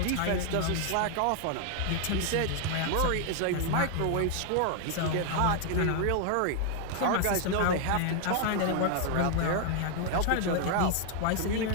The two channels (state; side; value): different; both; correlation 0.00